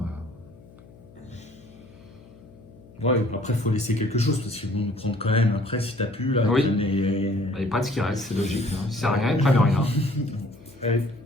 Ouais, après, il faut laisser quelque chose parce qu'ils vont nous prendre quand même. Après, si t'as pu, là. Oui. les- Il n'y a pas de ce qui reste, c'est logique. Hein. Si ça sert à rien, ils prennent rien. Ouais.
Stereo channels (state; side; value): noise; left; hum, 22 dB below the sound